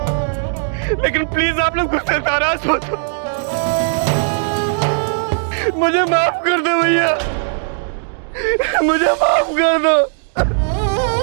लेकिन प्लीज आप लोग मुझसे नाराज मत हो। मुझे माफ कर दो भैया, मुझे माफ कर दो।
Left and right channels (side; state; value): left; silent; digital silence